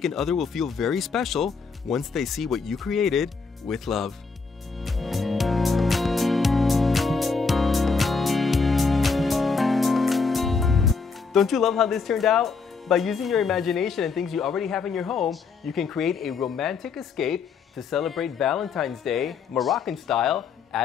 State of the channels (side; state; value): right; quieter; 4.8 dB